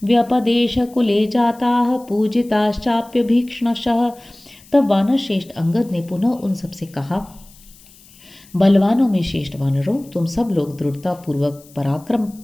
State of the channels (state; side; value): noise; left; hiss, 25 dB below the sound